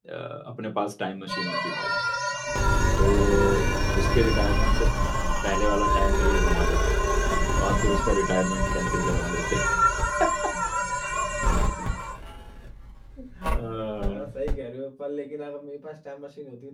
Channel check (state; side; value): identical; both; correlation 1.00